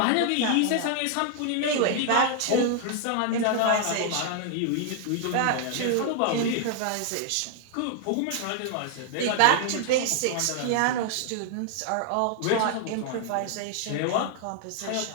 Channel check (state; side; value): different; both; correlation 0.00